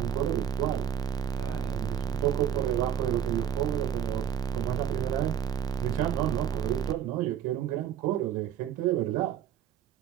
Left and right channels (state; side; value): quieter; left; 9.5 dB